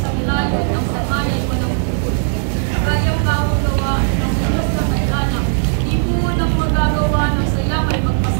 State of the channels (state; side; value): silent; left; digital silence